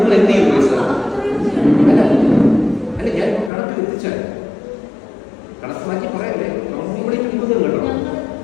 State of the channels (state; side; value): drops out; right; at 3.5 s